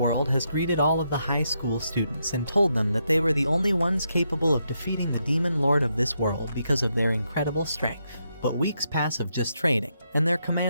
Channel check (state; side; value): inverted; both; correlation -0.81